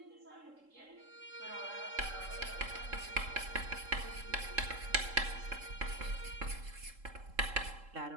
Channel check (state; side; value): late; left; 3.7 ms